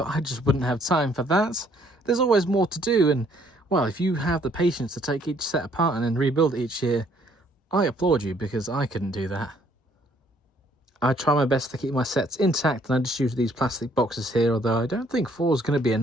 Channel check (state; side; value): normal; both; correlation 0.64